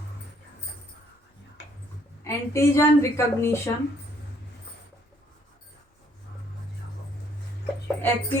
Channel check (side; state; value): both; normal; correlation 0.65